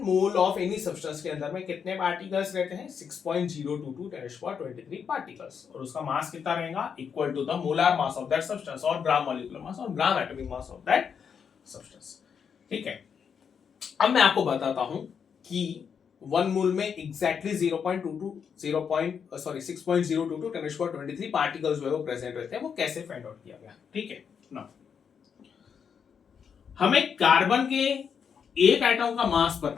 मोल ऑफ एनी सब्सटेंस के अंदर में कितने पार्टिकल्स रहते हैं, 6.022 10⁻23 पार्टिकल्स, और उसका मास कितना रहेगा, equal to the molar mass of that substance और ग्राम मॉलिक्यूलर मास और gram atomic mass of that substance. ठीक है, अब मैं आपको बताता हूं कि 1 मोल में एग्जैक्टली 6.022 10⁻23 पार्टिकल्स जो है वो प्रेजेंट रहते हैं, वो कैसे फाइंड आउट किया गया। ठीक है ना, हमें कार्बन के एक एटम का मास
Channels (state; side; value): quieter; right; 6.9 dB